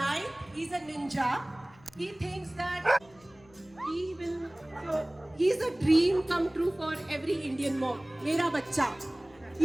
he's a ninja. He thinks that he will. So he's a dream come true for every Indian mom. Mera bacha.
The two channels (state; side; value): noise; left; hum, 28 dB below the sound